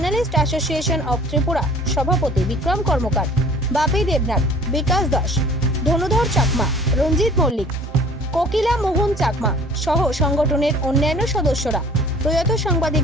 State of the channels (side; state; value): both; normal; correlation 0.49